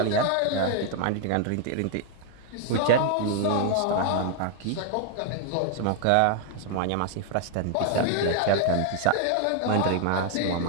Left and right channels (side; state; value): both; different; correlation 0.00